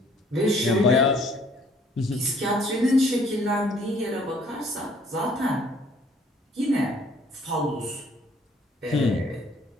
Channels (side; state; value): both; normal; correlation 0.60